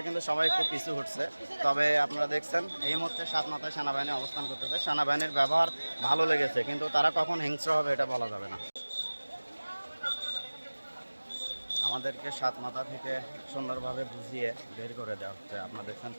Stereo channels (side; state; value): both; inverted; correlation -1.00